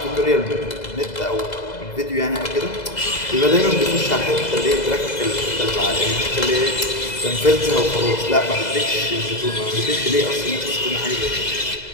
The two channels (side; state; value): right; late; 2.0 ms